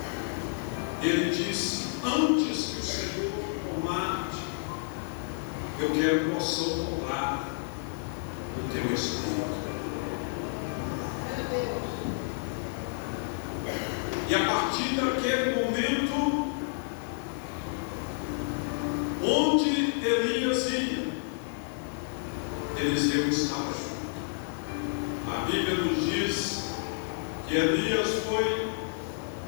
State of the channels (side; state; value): right; silent; digital silence